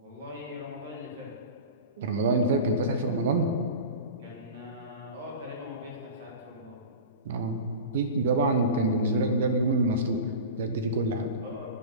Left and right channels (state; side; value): inverted; both; correlation -0.31